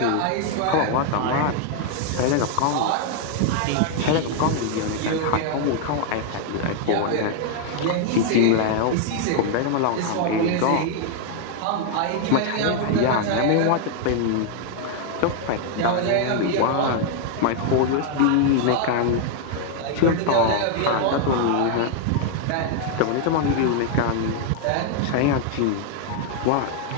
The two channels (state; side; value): different; both; correlation 0.00